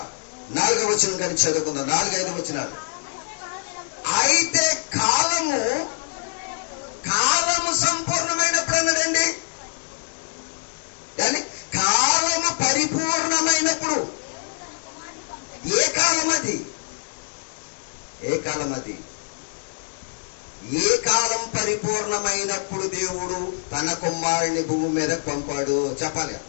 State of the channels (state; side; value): silent; right; digital silence